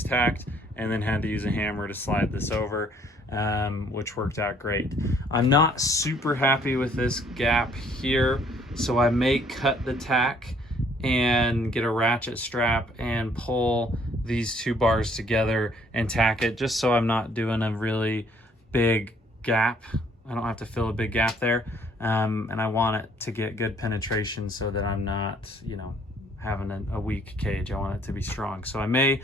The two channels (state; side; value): normal; both; correlation 0.63